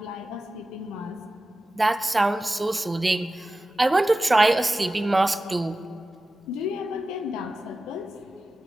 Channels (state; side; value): normal; both; correlation 0.94